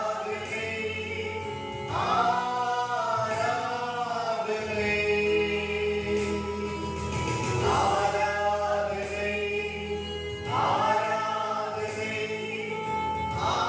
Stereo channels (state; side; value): identical; both; correlation 1.00